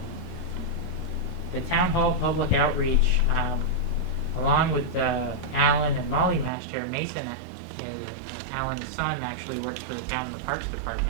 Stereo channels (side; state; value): left; drops out; at 6.5 s